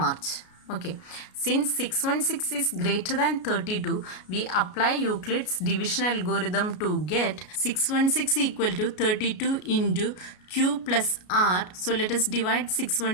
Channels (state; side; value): late; right; 33 ms